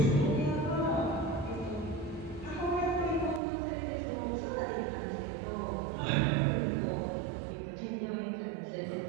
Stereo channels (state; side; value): drops out; left; at 3.4 s